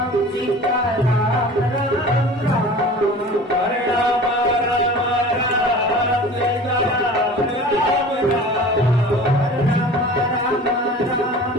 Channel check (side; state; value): both; normal; correlation 0.40